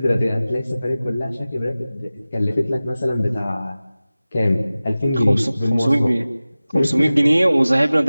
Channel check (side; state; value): both; inverted; correlation -0.97